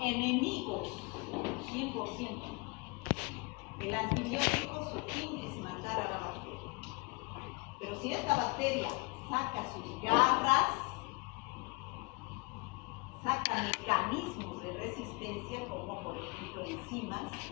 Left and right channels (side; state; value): right; quieter; 29.9 dB